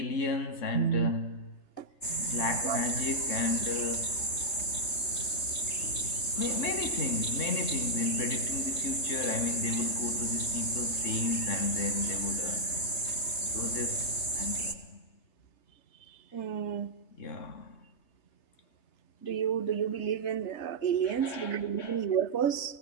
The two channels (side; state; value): right; late; 3.2 ms